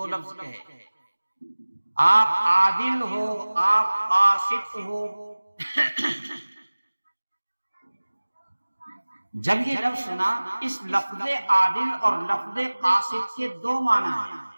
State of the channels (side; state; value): both; inverted; correlation -1.00